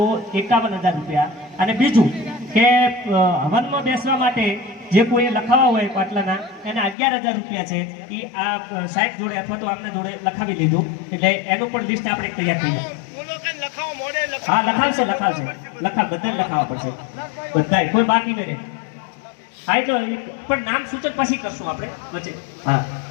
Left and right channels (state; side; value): drops out; right; at 7.0 s